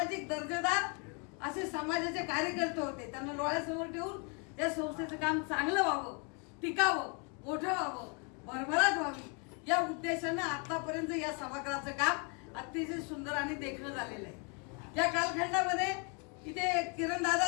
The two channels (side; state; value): right; quieter; 35.3 dB